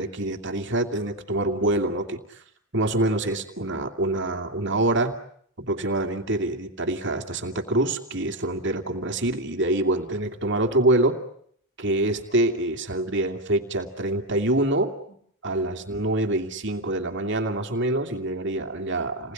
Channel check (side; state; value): both; normal; correlation 0.08